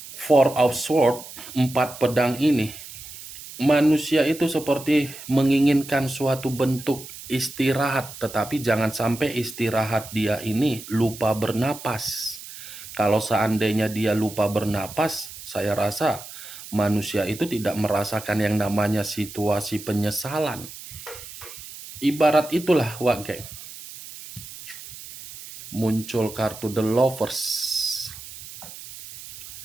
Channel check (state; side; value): noise; right; hiss, 14 dB below the sound